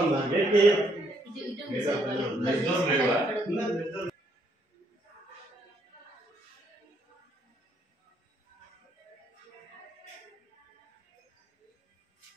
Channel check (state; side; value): normal; both; correlation 0.71